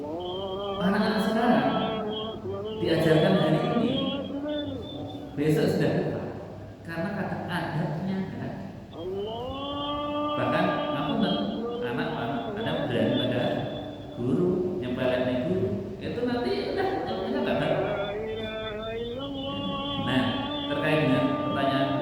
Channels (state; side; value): identical; both; correlation 1.00